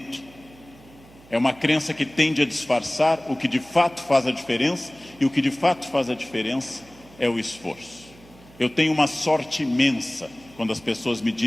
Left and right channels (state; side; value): noise; right; hum, 24 dB below the sound